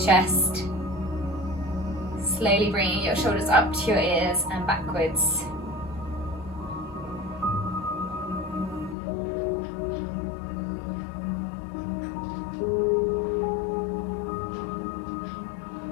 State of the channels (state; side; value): drops out; right; at 9.0 s